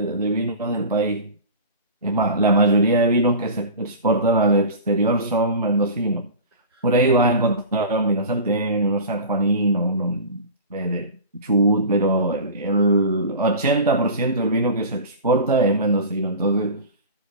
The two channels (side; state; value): both; inverted; correlation -0.34